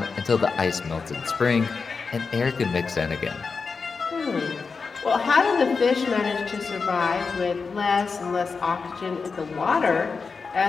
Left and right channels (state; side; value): quieter; right; 4.9 dB